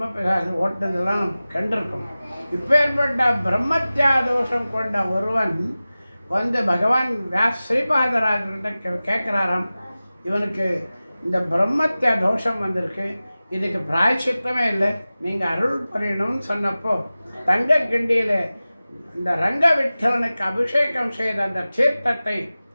பிசாசி ஓட்டுனதெல்லாம் நம்ம கண்டிருக்கோம். இப்பேற்பட்ட பிரம்மத்யா தோஷம் கொண்ட ஒருவன் வந்து பகவான் ஸ்ரீபாதராஜர்கிட்ட கேட்குறாராம், இவனுக்கு இந்த பிரம்மத்யா தோஷம் வந்திருக்கு, இதுக்கு பிராயச்சித்தமே இல்லை, நீங்கள் அருள் புரியணும்னு சொன்னப்போ தங்க கிண்டியில் இந்த ரங்க விட்டலனுக்கு அபிஷேகம் செய்த அந்த தீர்த்தத்தை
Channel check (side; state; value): both; inverted; correlation -0.97